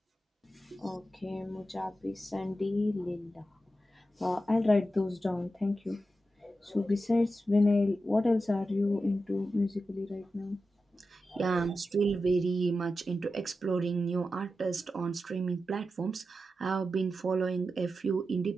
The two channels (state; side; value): normal; both; correlation 0.90